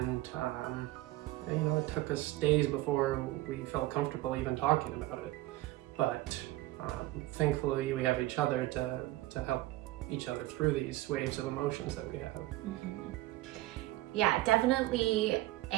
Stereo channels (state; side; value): quieter; left; 17.5 dB